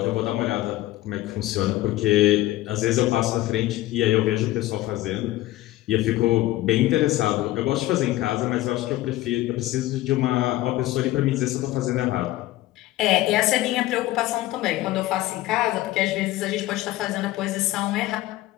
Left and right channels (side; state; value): right; quieter; 16.5 dB